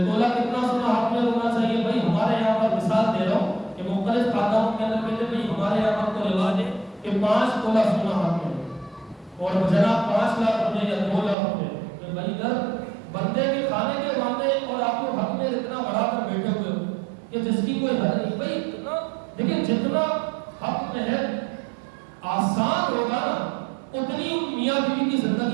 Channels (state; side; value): drops out; left; at 11.4 s